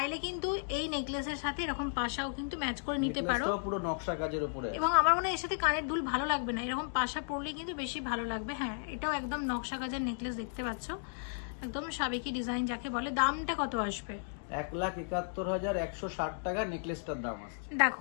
কিন্তু এই নেকলেসের সাথে এরকম পাশাও কিন্তু ম্যাচ করে নিতে পারো, পুরো নকশা কাজের উপরে। এবং আমার মনে হয় এর সাথে কানের দুল ভালো লাগবে না, এরকম পাশা পরলে কিন্তু বেশি ভালো লাগবে। হ্যাঁ, এটাও একদম নকশা কাজের নেকলেস, দেখতে পাচ্ছ, একদম সাবেকি ডিজাইন যাকে বলে। দামটা কত আসবে? 1,71,160 টাকা নেকলেসটার দাম আসছে।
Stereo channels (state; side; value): silent; right; digital silence